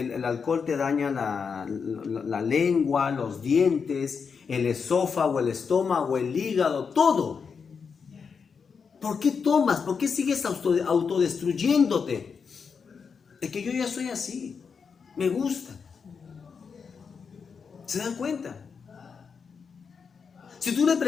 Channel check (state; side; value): quieter; right; 5.9 dB